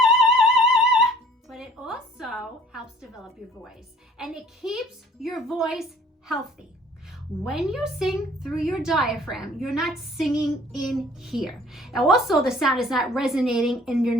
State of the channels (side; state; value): both; normal; correlation 0.53